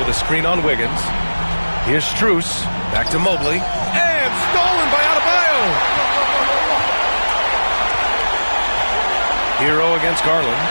a screen on Wiggins. Here's Strus. Back to Mobley. And stolen by Adebayo. Hero against Garland.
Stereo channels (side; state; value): both; inverted; correlation -1.00